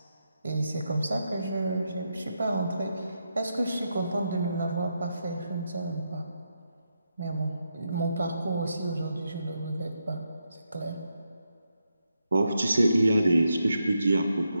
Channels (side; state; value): both; inverted; correlation -0.84